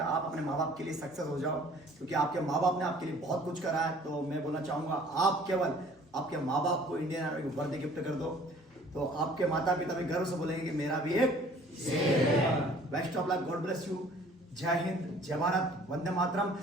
आप अपने माँ बाप के लिए सक्सेस हो जाओ, क्योंकि आपके माँ बाप ने आपके लिए बहुत कुछ करा है। तो मैं बोलना चाहूँगा आप केवल आपके माँ बाप को इंडियन आर्मी की वर्दी गिफ्ट कर दो, तो आपके माता पिता भी गर्व से बोलेंगे कि मेरा भी एक best of luck, God bless you, जय हिंद, जय भारत, वंदे मातरम,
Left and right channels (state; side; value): normal; both; correlation 0.53